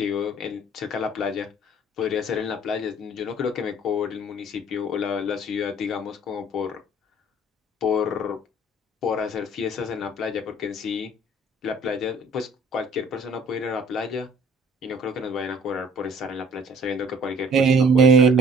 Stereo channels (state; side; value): normal; both; correlation 0.54